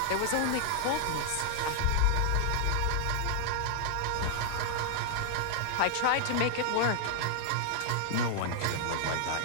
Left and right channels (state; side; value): different; both; correlation -0.01